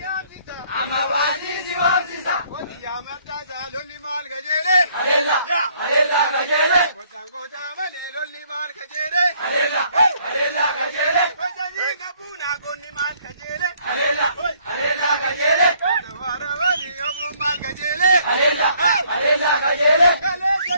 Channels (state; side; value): inverted; both; correlation -0.64